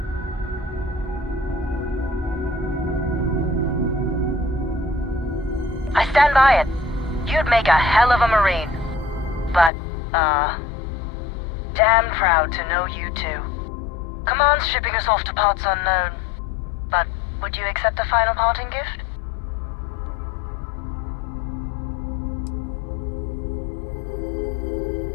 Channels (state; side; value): drops out; right; at 9.7 s